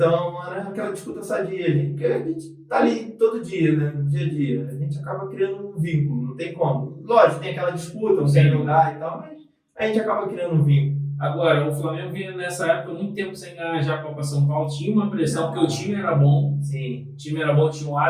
era aquela disputa sadia, porque a gente tá ali todo dia, né? No dia a dia. A gente acaba criando um vínculo, não tem como. Lógico, tem aquela disputa, não quer jogar e tal, mas a gente acaba criando um vínculo. Agora, o Flamengo vinha nessa época muito tempo sem ganhar já a Copa São Paulo. Tinha uma pressão, porque o time era bom. Sim. O time era bom, tinha o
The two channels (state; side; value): identical; both; correlation 1.00